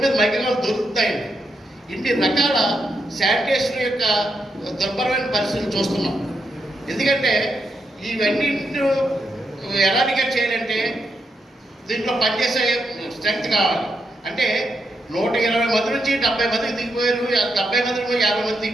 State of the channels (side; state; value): both; normal; correlation 0.82